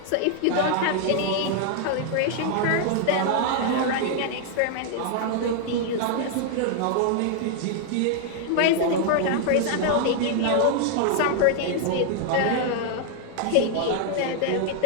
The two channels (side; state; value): both; different; correlation 0.00